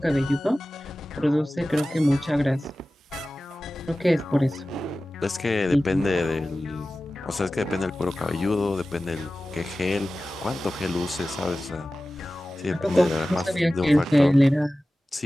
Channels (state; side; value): normal; both; correlation 0.96